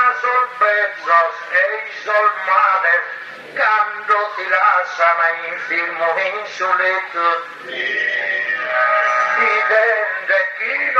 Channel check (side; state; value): both; identical; correlation 1.00